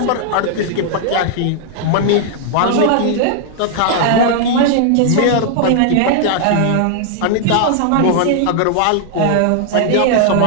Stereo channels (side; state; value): both; different; correlation -0.01